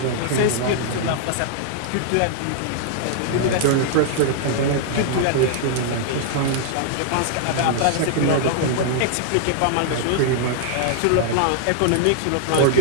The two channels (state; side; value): different; both; correlation -0.01